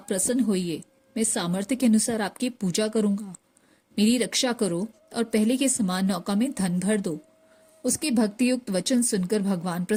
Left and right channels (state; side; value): identical; both; correlation 1.00